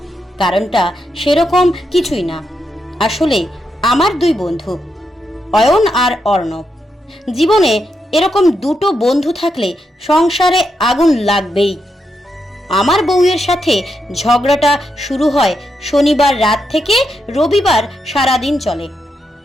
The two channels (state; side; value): normal; both; correlation 0.83